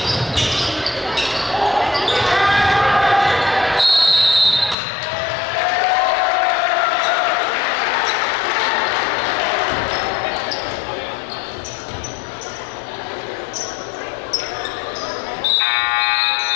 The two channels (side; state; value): right; drops out; at 4.8 s